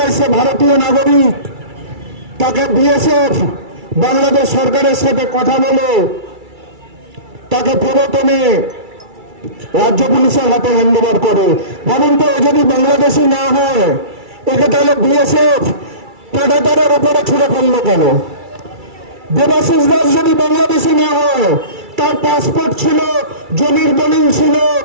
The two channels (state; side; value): late; left; 2.3 ms